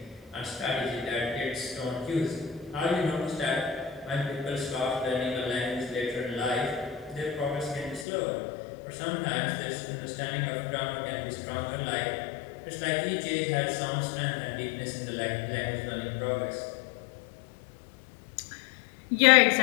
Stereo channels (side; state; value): right; drops out; at 8.1 s